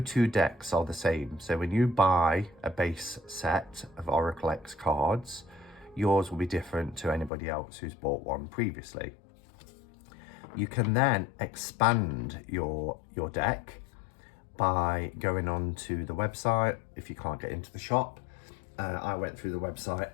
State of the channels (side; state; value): right; drops out; at 7.3 s